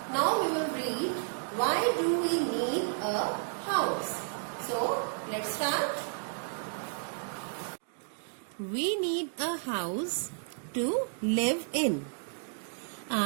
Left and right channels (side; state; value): left; silent; digital silence